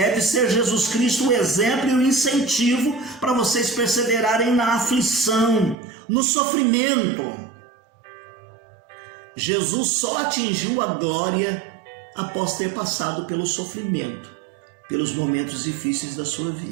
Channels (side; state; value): left; drops out; at 5.8 s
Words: ser Jesus Cristo o exemplo e o incentivo para vocês perseverarem na aflição, no sofrimento. Jesus só atingiu a glória após ter passado pelo sofrimento, pelos momentos difíceis da sua